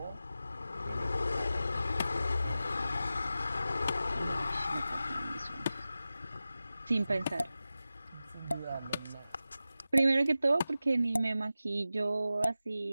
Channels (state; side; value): inverted; both; correlation -0.94